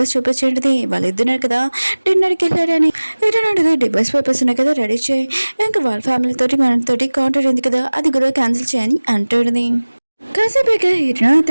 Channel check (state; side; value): inverted; both; correlation -1.00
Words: చూపించేది వాళ్ళిద్దరు కదా డిన్నర్కి వెళ్ళారని. ఏంటంటే డివోర్స్ పేపర్స్ ఉన్నాయి కదా రెడీ చేయి, ఇంకా వాళ్ళ ఫ్యామిలీతోటి మనతోటి కాంటాక్ట్ ఉంది కదా అది కూడా క్యాన్సిల్ చేయని అంటాడుది. కాసేపేక హీరోయిన్